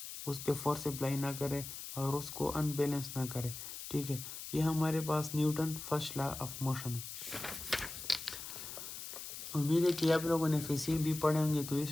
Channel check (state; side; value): noise; left; hiss, 9 dB below the sound